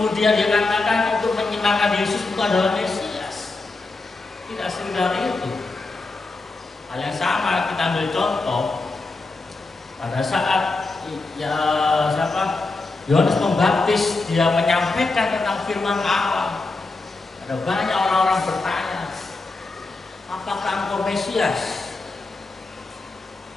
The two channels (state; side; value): quieter; right; 3.5 dB